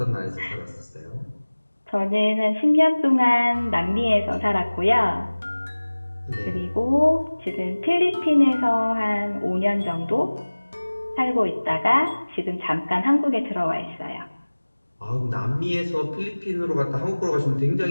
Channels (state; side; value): inverted; both; correlation -1.00